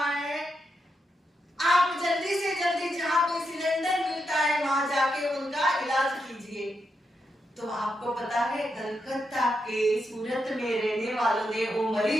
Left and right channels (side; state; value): both; normal; correlation 0.84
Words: तो आपको पता है कलकत्ता के सूरत में रहने वालों ने वो